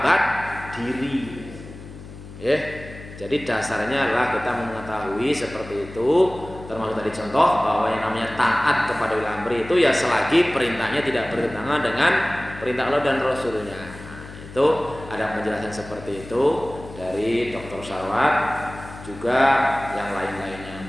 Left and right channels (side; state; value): left; noise; hum, 15 dB below the sound